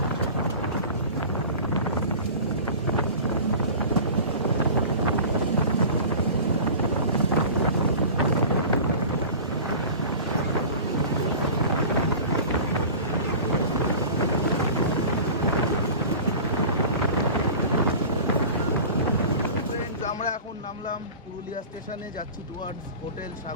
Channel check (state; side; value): inverted; both; correlation -0.37